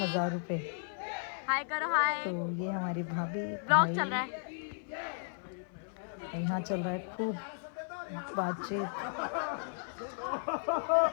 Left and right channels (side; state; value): right; silent; 55 dB below the other